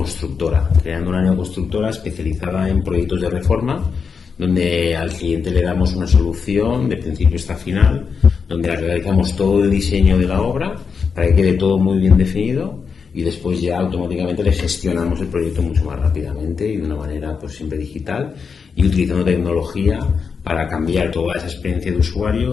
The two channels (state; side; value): quieter; right; 5.7 dB